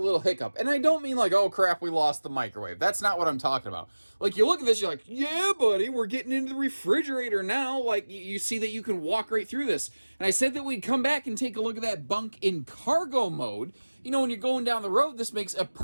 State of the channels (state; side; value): inverted; both; correlation -1.00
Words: hiccup. And I don't mean like, oh, crap, we lost the microwave. That's not what I'm talking about. Like, you look at this, you're like, yeah, buddy, we're getting into the refrigerator now. Like, you see that you can walk right through this. And I said that we'd come back and take a look at that bunk in cargo mode. When you're going down the road, this makes a